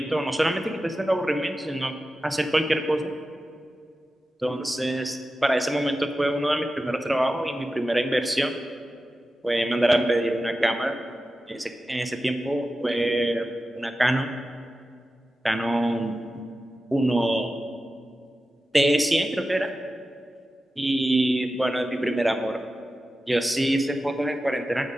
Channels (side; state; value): both; normal; correlation 0.93